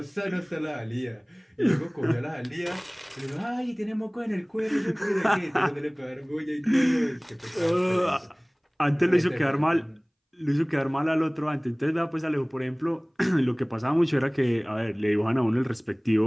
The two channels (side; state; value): both; identical; correlation 1.00